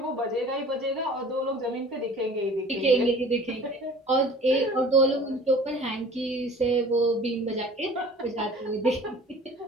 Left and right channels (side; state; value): both; normal; correlation 0.46